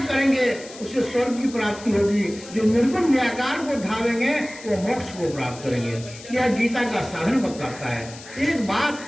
करेंगे उसे स्वर्ग की प्राप्ति होगी, जो निर्गुण निराकार को धावेंगे वो मोक्ष को प्राप्त करेंगे। यह गीता का साधन बताता है। एक बात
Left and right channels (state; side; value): noise; left; hiss, 17 dB below the sound